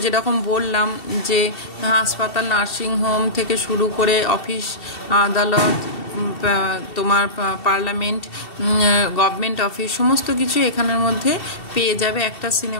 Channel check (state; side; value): late; right; 2.7 ms